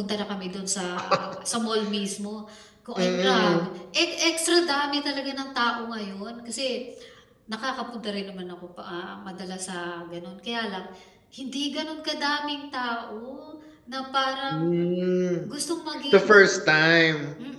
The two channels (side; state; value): both; identical; correlation 1.00